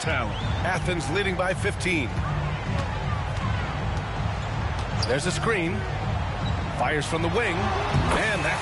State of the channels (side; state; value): both; identical; correlation 1.00